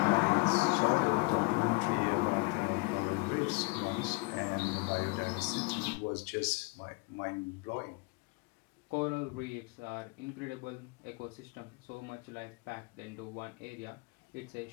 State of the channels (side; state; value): right; quieter; 27.0 dB